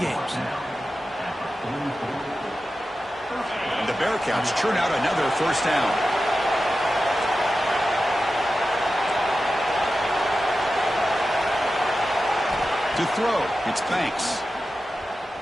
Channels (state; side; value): normal; both; correlation 0.93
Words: And the Bearcats churn out another first down. To throw, it's Banks.